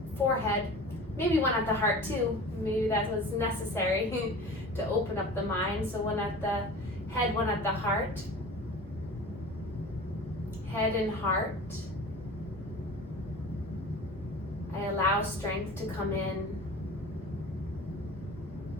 forehead, maybe one at the heart too. Maybe that was necessary to open up the mind. So one at the head, one at the heart. Head and heart. I allow strength to come in.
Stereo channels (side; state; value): both; normal; correlation 0.38